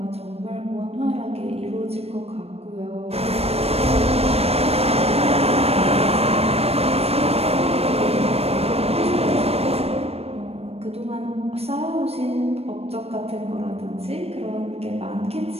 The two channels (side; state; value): left; late; 0.29 ms